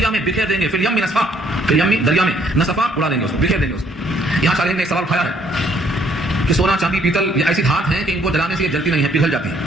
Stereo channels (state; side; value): normal; both; correlation 0.65